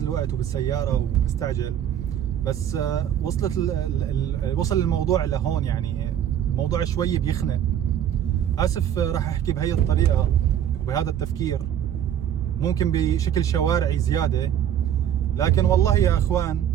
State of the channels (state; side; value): quieter; left; 10.1 dB